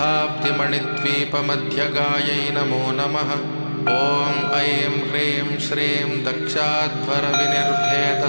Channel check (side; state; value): both; inverted; correlation -1.00